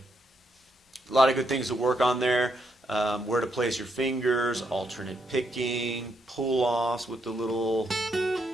A lot of good things to work on there. Where to place your fingers, alternate picking, pull-offs with the little...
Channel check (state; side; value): normal; both; correlation 0.78